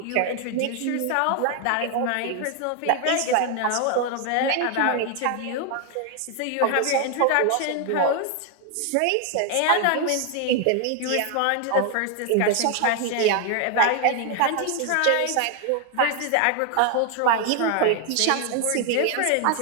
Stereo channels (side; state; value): both; different; correlation 0.01